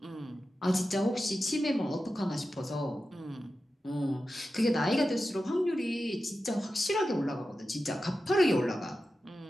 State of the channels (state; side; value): normal; both; correlation 0.92